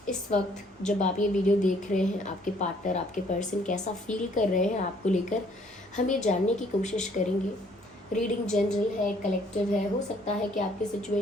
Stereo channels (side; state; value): both; normal; correlation 0.62